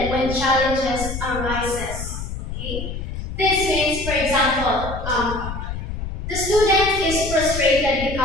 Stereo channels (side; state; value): left; noise; rumble, 6 dB below the sound